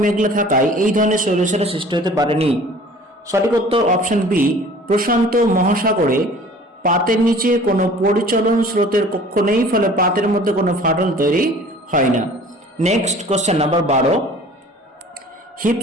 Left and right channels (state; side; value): normal; both; correlation 0.48